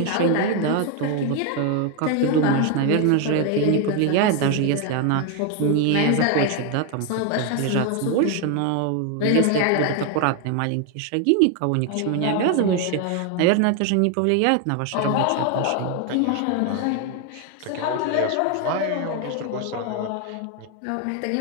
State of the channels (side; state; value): both; different; correlation 0.01